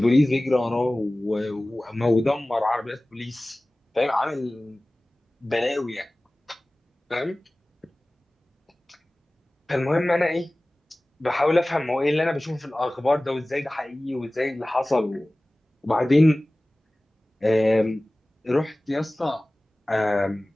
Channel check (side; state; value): both; normal; correlation 0.98